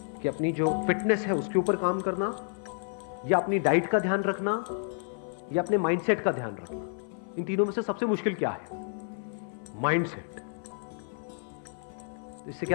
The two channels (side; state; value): right; silent; digital silence